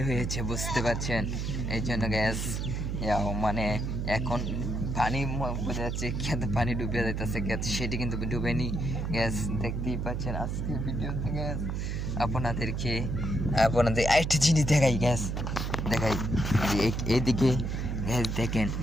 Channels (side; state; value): right; noise; hum, 2 dB below the sound